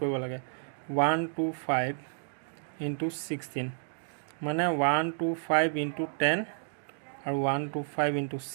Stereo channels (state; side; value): silent; left; digital silence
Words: লাগে 125 into 16 মানে 125 into 10 আৰু 125 into